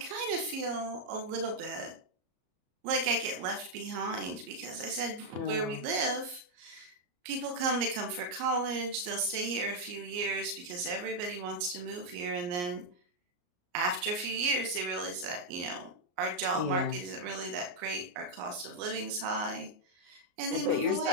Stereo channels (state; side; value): late; left; 34 ms